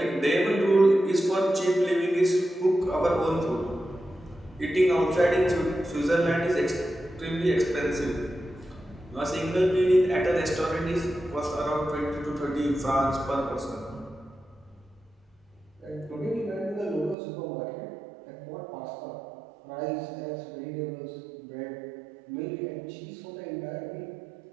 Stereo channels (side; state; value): left; drops out; at 17.2 s